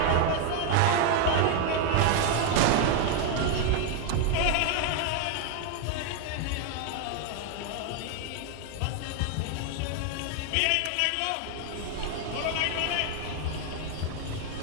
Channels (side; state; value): both; different; correlation 0.01